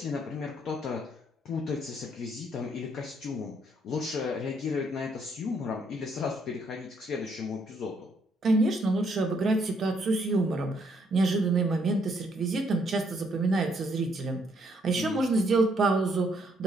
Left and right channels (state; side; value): normal; both; correlation 0.71